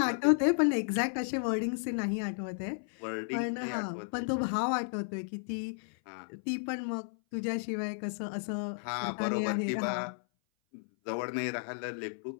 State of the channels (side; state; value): right; silent; 56 dB below the other